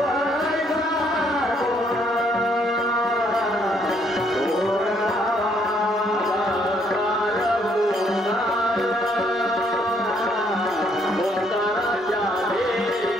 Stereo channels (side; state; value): both; normal; correlation 0.68